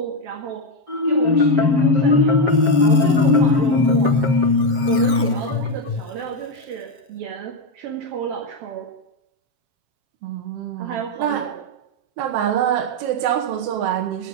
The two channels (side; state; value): left; late; 7.5 ms